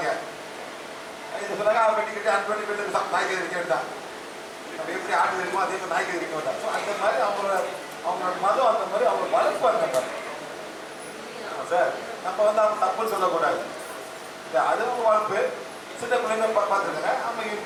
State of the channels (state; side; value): identical; both; correlation 1.00